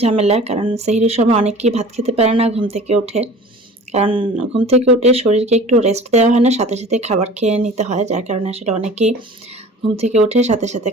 ঝামেলা। কারণ সেহরির সময় অনেকেই ভাত খেতে পারে না ঘুম থেকে উঠে। কারণ ঘুম থেকে উঠে শরীরকে একটু রেস্ট দেওয়া হয় না, সাথে, সাথে খাবার খেয়ে নিতে হয়। যার কারণে আসলে অনেকেই ঘুম থেকে উঠে সাথে, সাথে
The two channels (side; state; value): both; normal; correlation 0.43